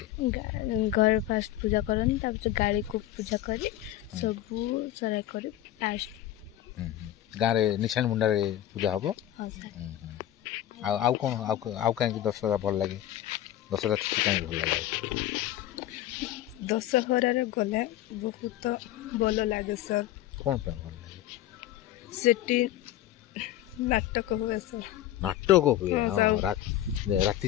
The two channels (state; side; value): quieter; right; 13.1 dB